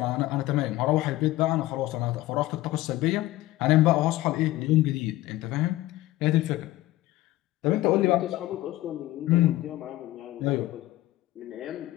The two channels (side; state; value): right; quieter; 16.7 dB